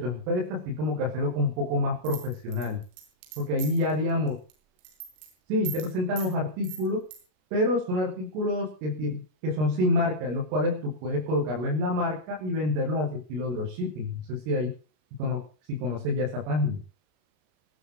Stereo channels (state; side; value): late; left; 33 ms